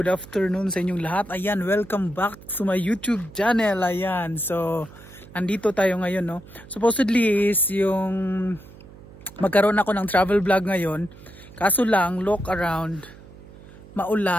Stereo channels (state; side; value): noise; right; hum, 20 dB below the sound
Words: afternoon sa inyong lahat. Ayan, welcome back to my YouTube channel. Ayan, so andito tayo ngayon, no. Supposedly is yung magkaroon ako ng travel vlog ngayon. Kaso lang, look around,